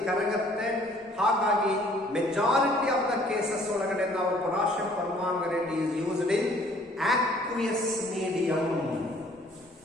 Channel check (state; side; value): normal; both; correlation 0.58